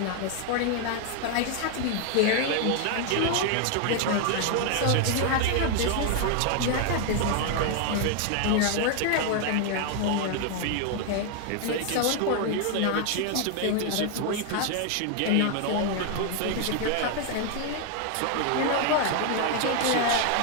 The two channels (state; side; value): different; both; correlation 0.00